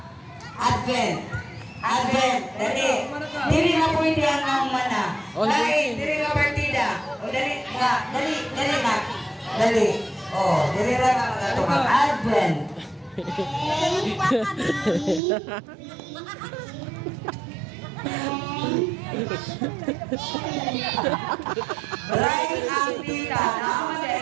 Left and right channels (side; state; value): left; drops out; at 15.2 s